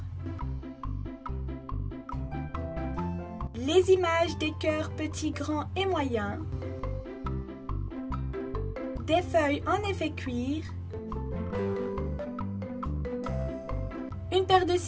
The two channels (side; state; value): both; identical; correlation 1.00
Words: les images des cœurs petits, grands et moyens, des feuilles en effet cuir, une paire de